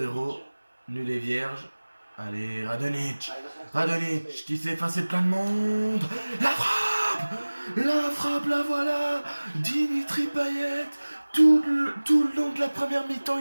Nul et vierge. Allez, Radonjic. Radonjic qui s'est effacé de plein de monde. La frappe, la voilà. Dimitri Payet. Tout le long de la première mi-temps,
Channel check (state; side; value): inverted; both; correlation -1.00